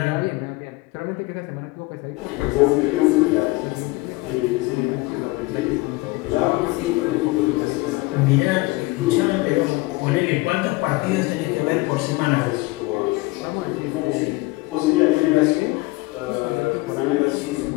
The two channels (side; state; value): right; quieter; 22.5 dB